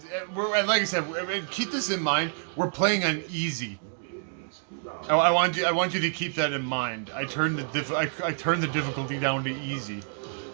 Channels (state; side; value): silent; left; digital silence